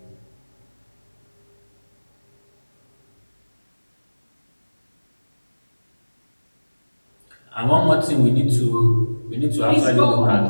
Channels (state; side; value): inverted; both; correlation -1.00